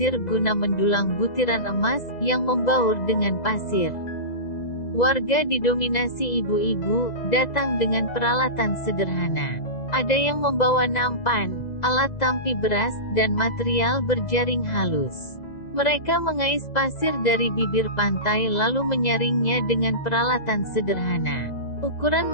guna mendulang butiran emas, yang membaur dengan pasir. Warga didominasi ibu-ibu, datang dengan peralatan sederhana. Ada yang membawa nampan, alat tampi beras, dan material berjaring halus. Mereka mengais pasir dari bibir pantai lalu menyaringnya dengan peralatan sederhana. Ukuran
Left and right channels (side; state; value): right; late; 2.0 ms